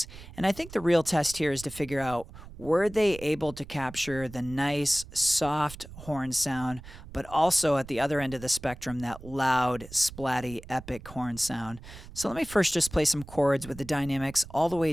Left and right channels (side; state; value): right; noise; rumble, 16 dB below the sound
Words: and I think the real test here is to figure out, were they able to capture the nice, soft horn sound, but also at the other end of the spectrum, that loud, splatty, epic horn sound. So let me first just play some chords with the dynamics all the